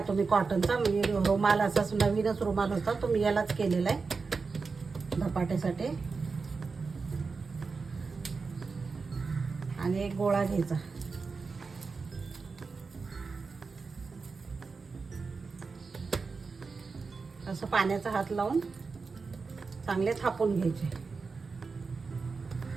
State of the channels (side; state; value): left; quieter; 4.6 dB